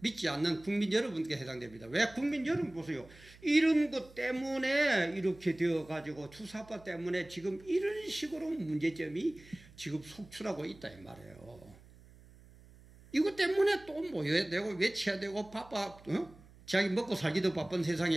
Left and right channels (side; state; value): right; noise; hum, 23 dB below the sound